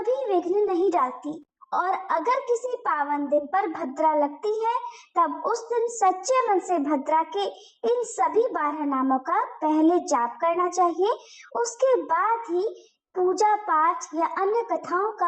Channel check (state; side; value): identical; both; correlation 1.00